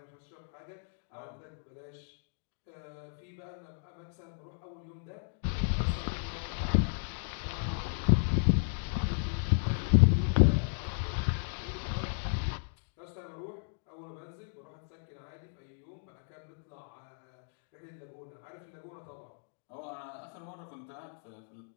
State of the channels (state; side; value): silent; right; digital silence